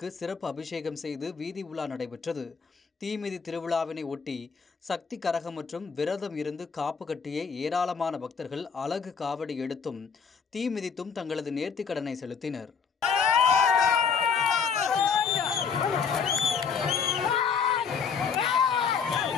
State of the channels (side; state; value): right; quieter; 6.1 dB